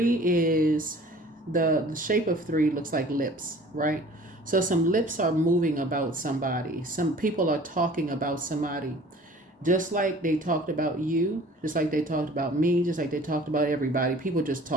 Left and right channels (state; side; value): normal; both; correlation 0.48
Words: is the shape of 3 looks like lips, right? So some lips are moving about somebody. Some people are talking about somebody. Just like they talked about you, just like they talked about me, just like they talked about everybody. People just